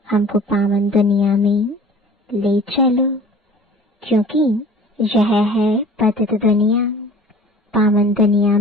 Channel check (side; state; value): both; normal; correlation 0.46